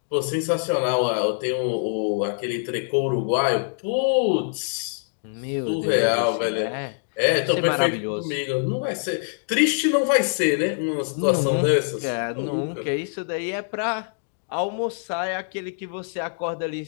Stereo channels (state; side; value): silent; right; digital silence